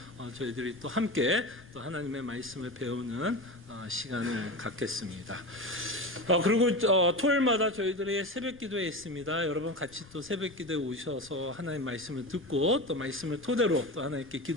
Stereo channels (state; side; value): noise; left; rumble, 22 dB below the sound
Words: 저희들이 또 함께 또 하나님의 말씀을 배우는 시간을 갖겠습니다. 그리고 토요일마다 저희들이 새벽 기도회 있습니다. 여러분 같이 또 새벽 기도에 오셔서 하나님 말씀을 듣고 또 말씀을 토대로 또 하나님께